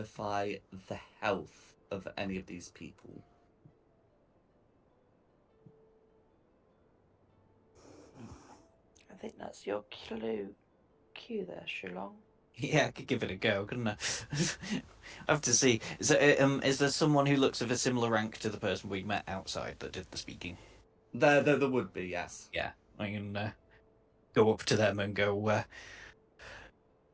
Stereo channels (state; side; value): identical; both; correlation 1.00